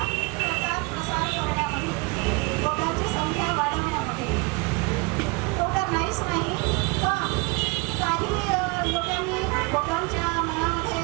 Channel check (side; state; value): left; quieter; 27.8 dB